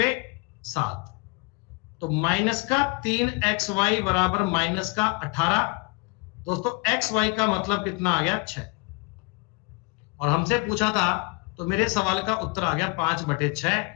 7, तो माइनस का 3xy बराबर माइनस का 18। दोस्तों xy का मतलब कितना आ गया? 6। और हमसे पूछा था, तो मेरे सवाल का उत्तर आ गया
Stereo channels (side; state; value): right; quieter; 29.0 dB